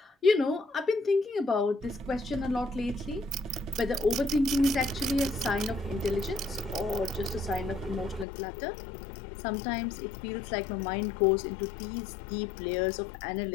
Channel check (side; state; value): right; drops out; at 8.2 s